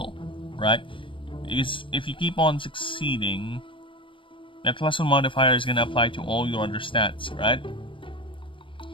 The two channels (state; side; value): late; right; 0.25 ms